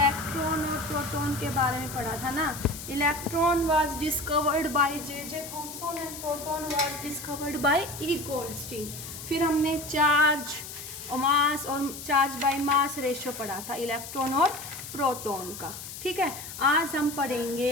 और प्रोटॉन के बारे में पढ़ा था ना। Electron was discovered by J Thomson and proton was discovered bye E Goldstein. फिर हमने चार्ज मास और चार्ज बाय मास रेशियो पढ़ा था इलेक्ट्रॉन और प्रोटॉन का। ठीक है, आज हम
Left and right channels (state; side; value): noise; left; hiss, 11 dB below the sound